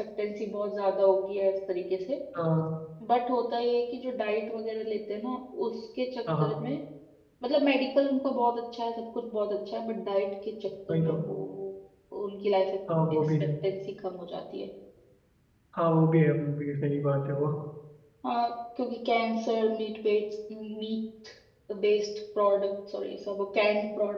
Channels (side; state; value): both; identical; correlation 1.00